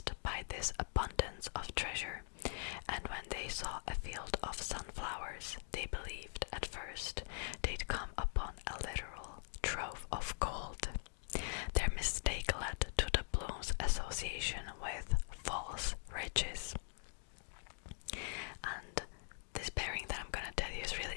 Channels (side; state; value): right; silent; digital silence